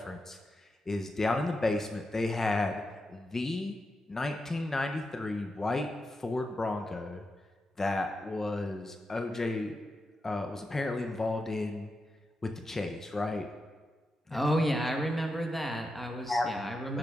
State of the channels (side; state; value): both; normal; correlation 0.88